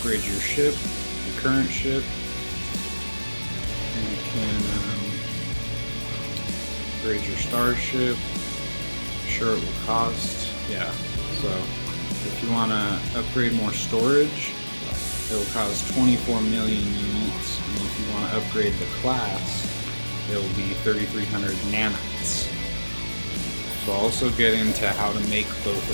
your ship, your current ship. And you can upgrade your starship. Sure, it will cost. Yeah, so if you want to upgrade more storage, it will cost 24 million units. And if you want to upgrade the class, it will be 3,300 nanites. So I'll also get into how to make both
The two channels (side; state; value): both; inverted; correlation -1.00